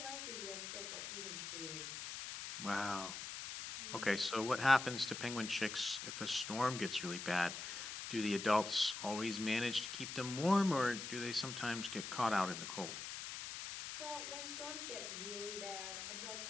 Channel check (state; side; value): noise; left; hiss, 7 dB below the sound